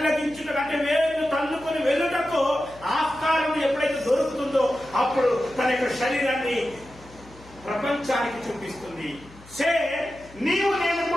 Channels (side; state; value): left; noise; hum, 22 dB below the sound